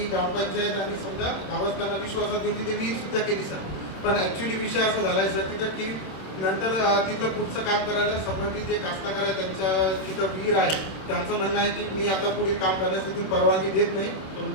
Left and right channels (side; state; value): right; late; 27 ms